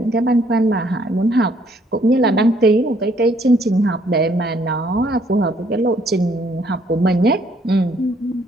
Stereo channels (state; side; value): normal; both; correlation 0.66